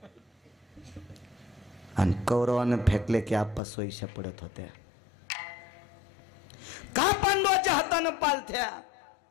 आणि कौरवानं फेकले की आप्पा सोयीशा पडत होत्या. का पांडवाच्या हातानं पालथ्या?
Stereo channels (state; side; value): drops out; right; at 3.6 s